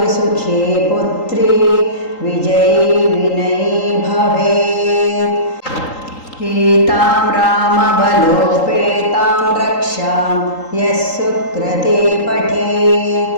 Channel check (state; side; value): late; right; 3.8 ms